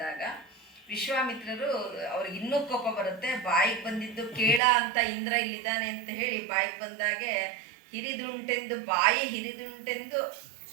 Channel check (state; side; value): drops out; left; at 4.6 s